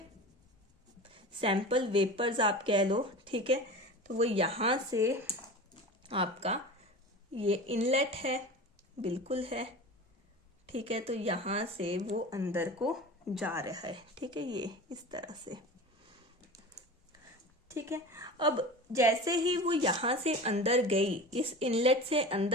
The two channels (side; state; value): both; normal; correlation 0.33